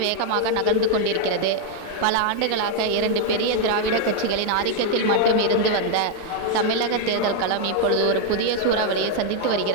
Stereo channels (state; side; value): different; both; correlation 0.00